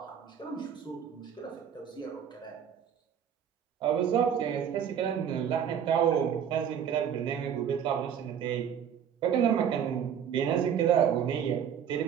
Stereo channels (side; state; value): left; quieter; 8.4 dB